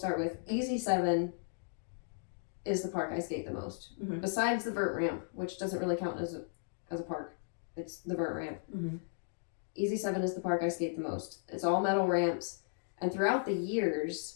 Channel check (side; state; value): right; silent; digital silence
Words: with Easy 7 is the park I skate the most. Mm-hmm. Besides the vert ramp, which doesn't really count as a park. It's the vert ramp. Mm-hmm. Easy 7 is the park I skate the most. It's all metal ramps. And throughout the